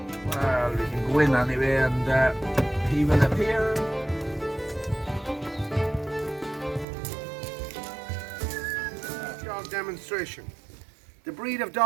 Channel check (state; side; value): drops out; left; at 6.9 s